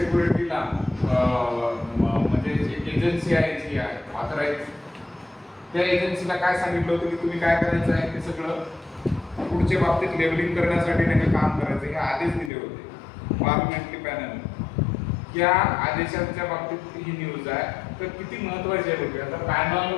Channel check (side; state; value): right; drops out; at 12.5 s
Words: म्हणजे एक एजन्सी आहे जी आहे ऑथराईज, त्या एजन्सीला काय सांगितलं होतं की तुम्ही काय करायचं आहे ते सगळं फूडच्या बाबतीत लेबलिंग करण्यासाठी त्यांनी काम करायचं हे आदेश दिले होते पार्लमेंटरी पॅनल. या आदेशांच्या बाबतीत ही न्यूज आहे. तर किती महत्त्वाची आहे बघूया. आता panel